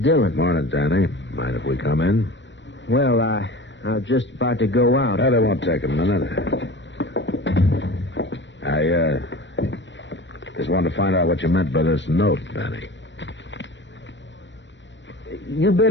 Morning, Danny. Mind if we come in? Well, I was just about to go out. That won't take a minute. I just wanted to find out what you meant by this note, Danny. You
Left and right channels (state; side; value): late; right; 0.53 ms